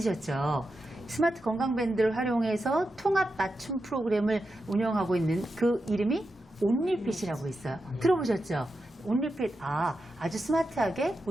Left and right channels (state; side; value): normal; both; correlation 0.89